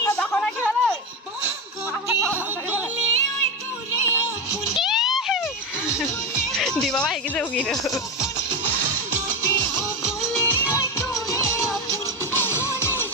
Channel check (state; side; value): normal; both; correlation 0.15